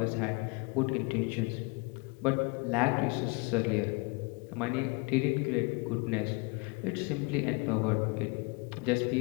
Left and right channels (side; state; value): right; quieter; 29.5 dB